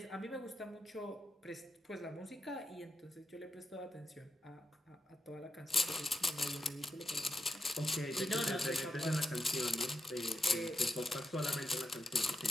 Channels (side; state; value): both; normal; correlation 0.85